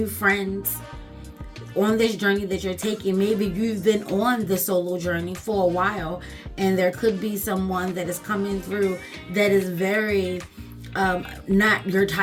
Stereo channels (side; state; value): both; identical; correlation 1.00